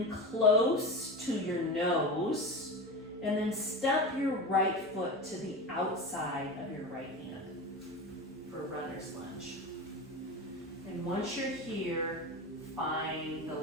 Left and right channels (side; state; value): both; normal; correlation 0.26